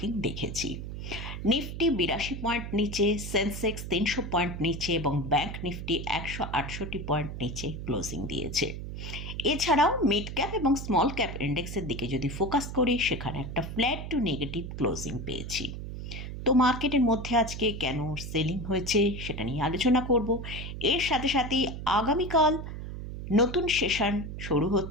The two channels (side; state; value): right; noise; hum, 7 dB below the sound